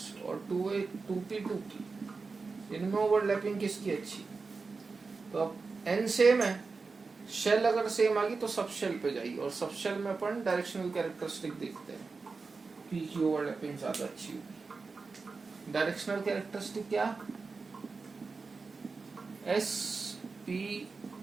और 2p, इनमें ओवरलैपिंग किसकी अच्छी? तो अब n सेम है, शेल अगर सेम आ गई तो सब शेल पे जाइए, और सब शेल में अपन डायरेक्शनल कैरेक्टरिस्टिक देखते हैं, P की ओवरलैपिंग ज्यादा अच्छी होगी। डायरेक्शनल कैरेक्टरिस्टिक क्या? S, P,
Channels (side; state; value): left; quieter; 4.3 dB